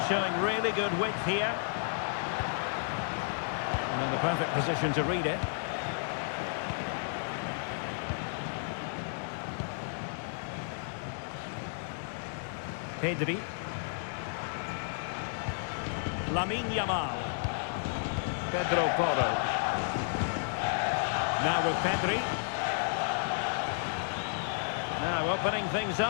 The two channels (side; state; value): right; silent; 56 dB below the other